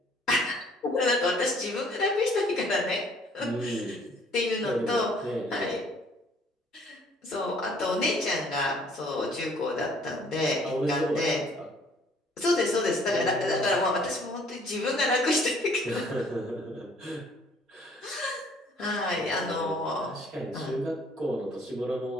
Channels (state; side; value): normal; both; correlation 0.59